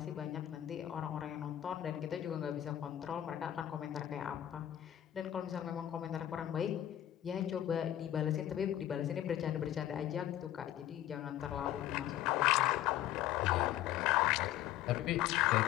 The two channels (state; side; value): quieter; right; 12.4 dB